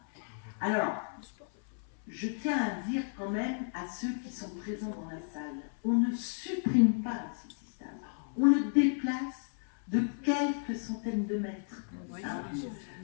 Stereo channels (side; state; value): right; silent; 55 dB below the other